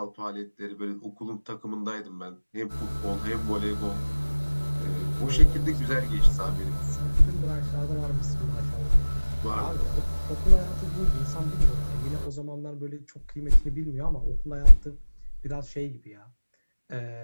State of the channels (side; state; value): both; inverted; correlation -1.00